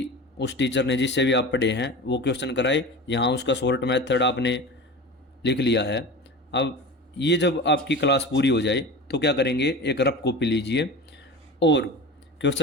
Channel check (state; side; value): normal; both; correlation 0.31